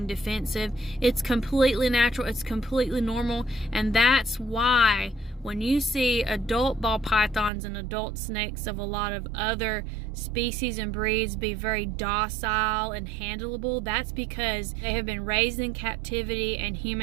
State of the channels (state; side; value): drops out; left; at 7.5 s